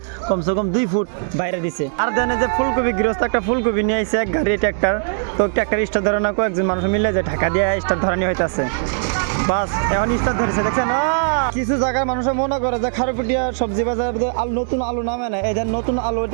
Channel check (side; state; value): left; silent; digital silence